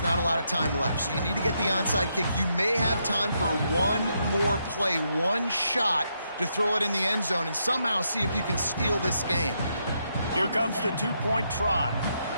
not a lot of time left. So you need to get the onside kick. You may have time for one more play, one shot to throw it in the end zone and somehow see if you can steal this game. Here comes the two-point try.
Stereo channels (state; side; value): inverted; both; correlation -0.79